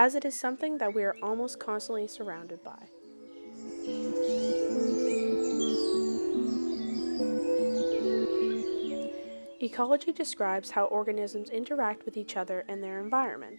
it is something that we are almost constantly surrounded by. Ecology describes how organisms interact with each other and their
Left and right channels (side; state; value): both; inverted; correlation -1.00